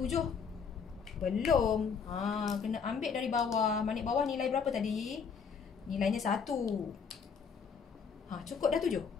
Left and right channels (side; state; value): right; quieter; 6.1 dB